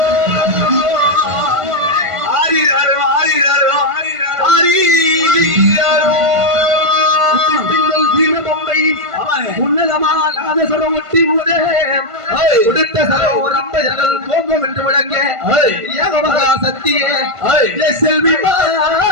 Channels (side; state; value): left; late; 1.5 ms